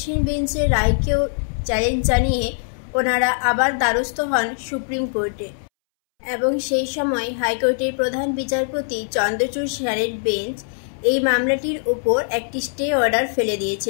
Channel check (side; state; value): right; silent; 65 dB below the other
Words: বেঞ্চের রায়কেও চ্যালেঞ্জ জানিয়ে ওনারা আবার দ্বারস্থ হন সুপ্রিম কোর্টে, এবং সেই সময় হাইকোর্টের প্রধান বিচারপতি চন্দ্রচূড় স্যারের বেঞ্চ এই মামলাটির ওপর একটি স্টে অর্ডার ফেলে